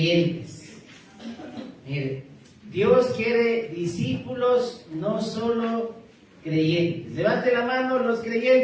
Mire, Dios quiere discípulos, no solo creyentes. Levante la mano los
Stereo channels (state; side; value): identical; both; correlation 1.00